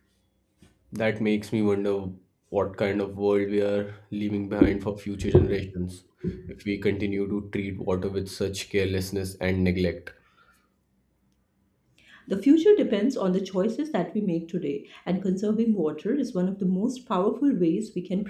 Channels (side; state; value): both; identical; correlation 1.00